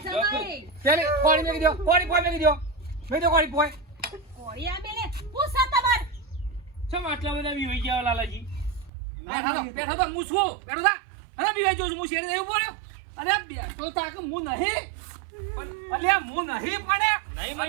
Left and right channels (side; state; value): left; drops out; at 8.9 s